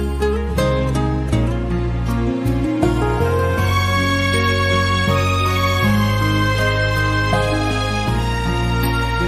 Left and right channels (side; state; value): both; identical; correlation 1.00